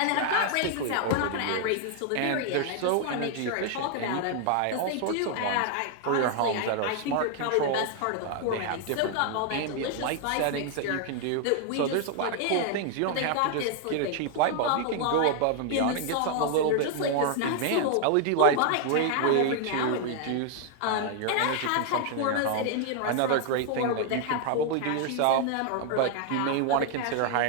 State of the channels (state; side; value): different; both; correlation 0.00